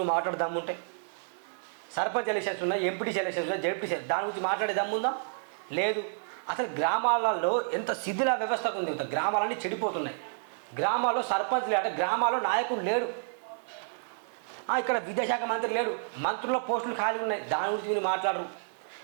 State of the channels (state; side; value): silent; left; 58 dB below the other